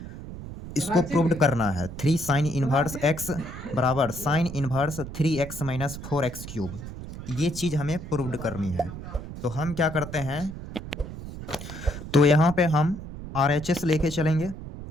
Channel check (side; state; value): right; noise; rumble, 11 dB below the sound